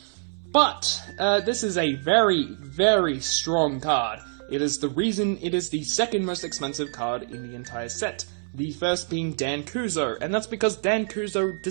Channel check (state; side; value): silent; left; 61 dB below the other